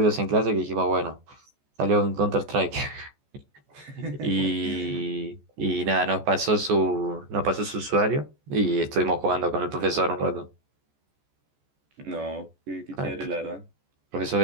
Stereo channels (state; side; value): late; left; 14 ms